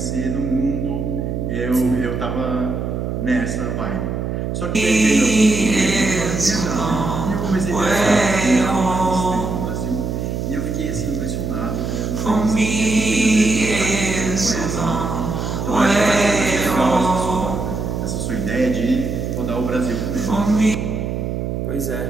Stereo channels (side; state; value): right; noise; hum, 3 dB below the sound